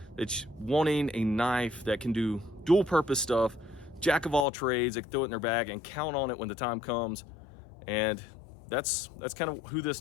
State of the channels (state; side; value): drops out; right; at 4.5 s